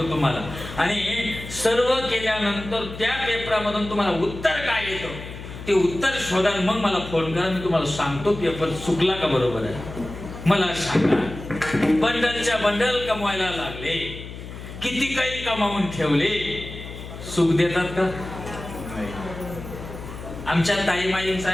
तुम्हाला. आणि सर्व केल्यानंतर त्या पेपरामधून तुम्हाला उत्तर काय येतं ते उत्तर शोधा, मग मला फोन करा, मी तुम्हाला सांगतो पेपर चुकला का बरोबर आहे. मला सांगा, बंडलच्या बंडल कमवायला लागले, किती काही कमावून ठेवले, सुख देतात का? आमच्या ताईमाईंचा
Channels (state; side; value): noise; left; hum, 12 dB below the sound